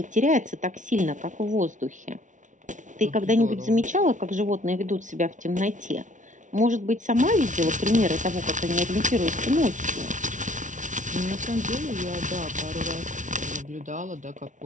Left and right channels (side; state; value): left; late; 0.37 ms